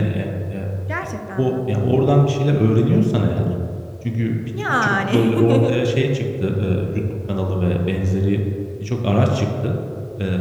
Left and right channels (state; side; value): identical; both; correlation 1.00